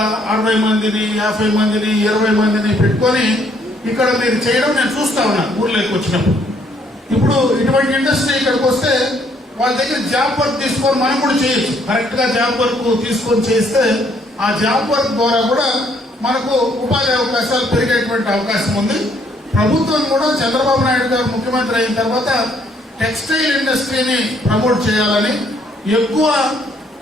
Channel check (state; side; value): normal; both; correlation 0.67